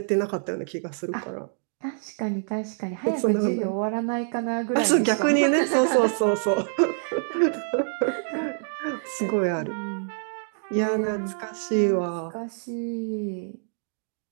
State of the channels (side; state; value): left; silent; digital silence